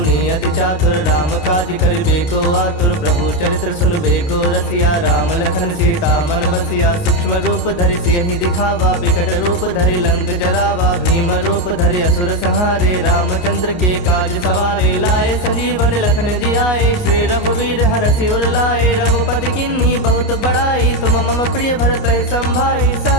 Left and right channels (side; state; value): right; late; 29 ms